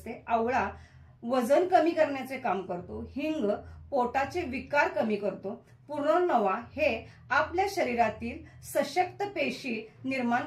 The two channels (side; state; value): both; identical; correlation 1.00